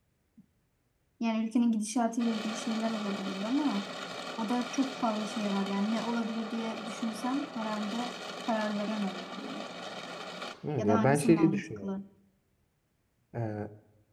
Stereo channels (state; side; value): identical; both; correlation 1.00